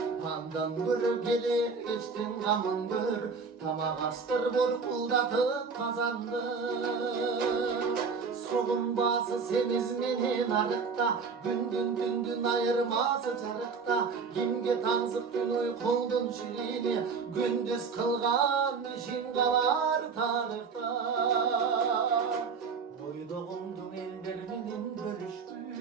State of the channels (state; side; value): quieter; left; 5.2 dB